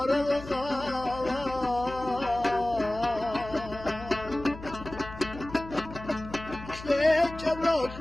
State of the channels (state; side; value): noise; left; hum, 14 dB below the sound